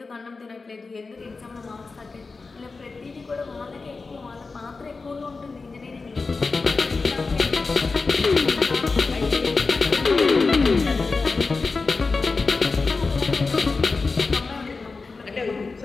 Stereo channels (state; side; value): quieter; right; 4.1 dB